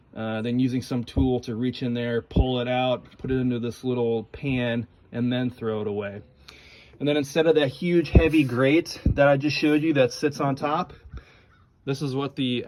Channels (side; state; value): both; identical; correlation 1.00